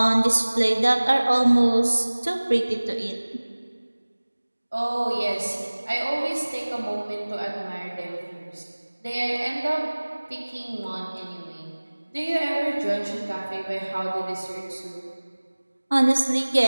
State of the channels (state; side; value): inverted; both; correlation -1.00